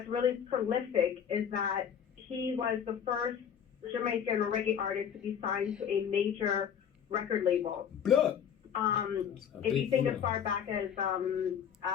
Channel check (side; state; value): right; quieter; 8.2 dB